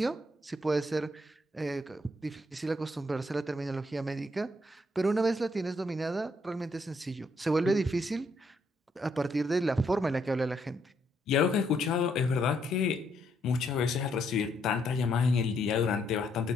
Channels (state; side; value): normal; both; correlation 0.74